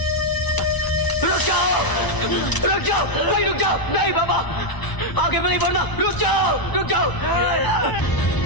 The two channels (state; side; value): late; right; 1.0 ms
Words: रुक जाओ, भाई रुक जाओ। नहीं बाबा, आगे नहीं बढ़ना। रुक जाओ।